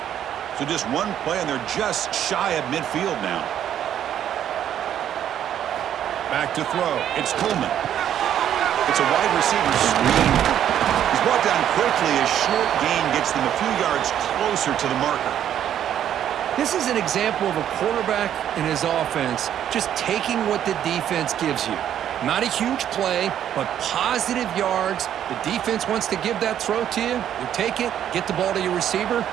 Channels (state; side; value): quieter; left; 10.3 dB